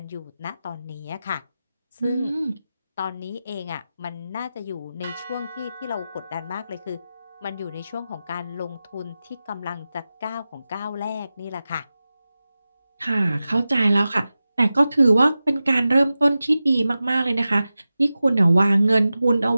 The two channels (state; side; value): inverted; both; correlation -0.94